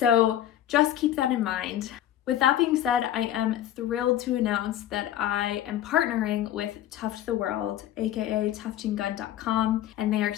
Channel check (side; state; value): right; quieter; 12.0 dB